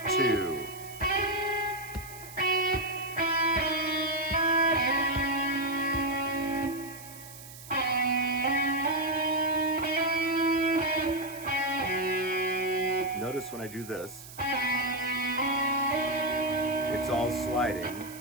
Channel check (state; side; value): noise; right; hiss, 16 dB below the sound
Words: 2. Notice when I do this, it's all